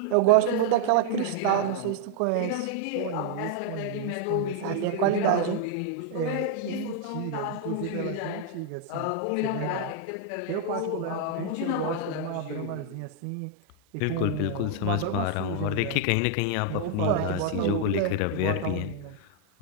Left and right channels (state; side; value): different; both; correlation 0.00